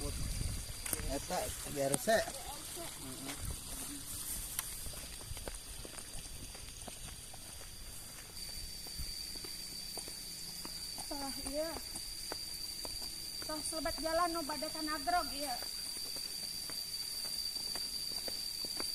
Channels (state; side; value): identical; both; correlation 1.00